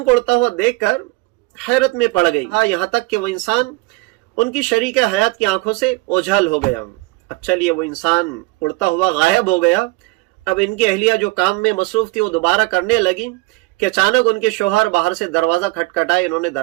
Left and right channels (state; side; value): quieter; left; 23.0 dB